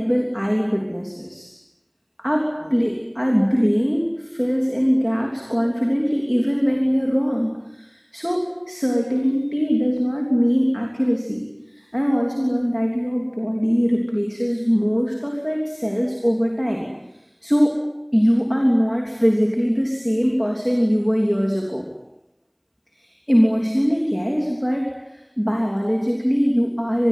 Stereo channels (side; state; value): both; identical; correlation 1.00